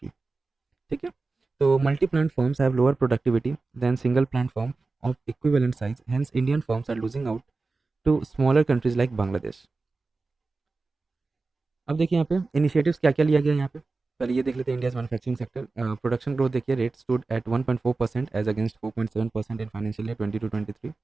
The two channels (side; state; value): left; quieter; 3.8 dB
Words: ठीक है. तो multi plant firms have lower productivity than single plant firm of equivalent size. Hence, Indian firms are losing out to smaller countries like Bangladesh. अब देखिए यहाँ पे initiatives क्या क्या लिया गया यहाँ पे. पहले ये देख लेते हैं India's manufacturing sector. Production growth देखिए, rate stood at 1.4% as against 4.7% in financial year 22-23,